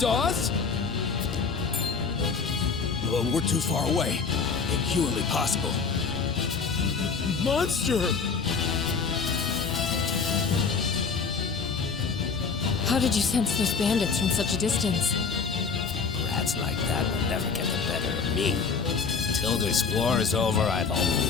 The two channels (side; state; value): right; quieter; 5.3 dB